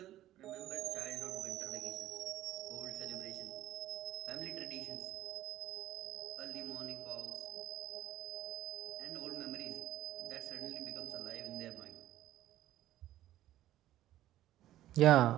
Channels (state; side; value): quieter; left; 13.8 dB